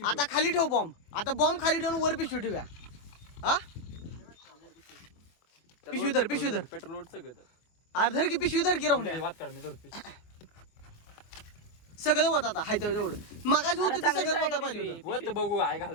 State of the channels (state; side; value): late; right; 24 ms